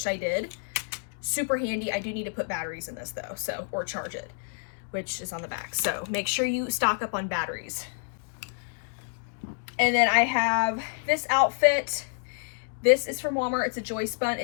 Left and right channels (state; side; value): silent; right; digital silence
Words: I did. Super handy. I do need to put batteries in this though, so, or charge it, which is on the back. So make sure you stock up on batteries. And then I have this outfit. This is from Walmart. It's a joist bun.